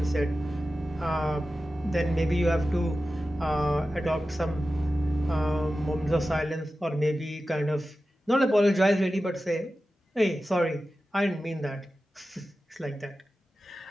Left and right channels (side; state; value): both; normal; correlation 0.94